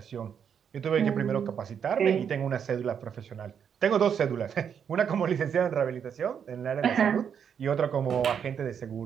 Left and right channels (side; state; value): left; quieter; 7.7 dB